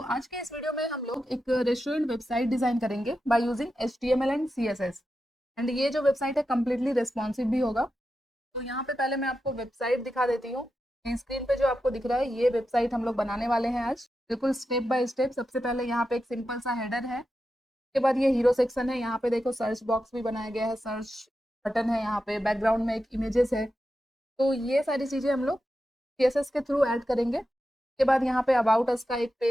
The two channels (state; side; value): normal; both; correlation 0.89